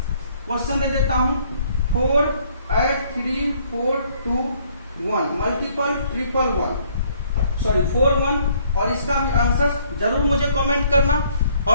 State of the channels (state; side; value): inverted; both; correlation -0.63